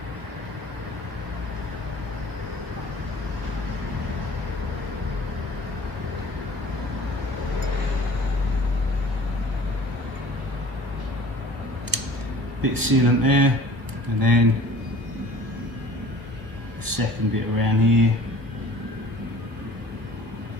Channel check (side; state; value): left; late; 1.3 ms